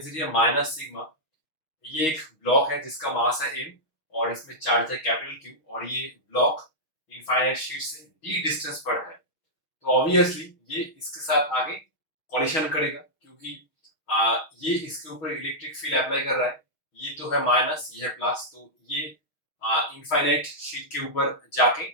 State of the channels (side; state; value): right; late; 6.3 ms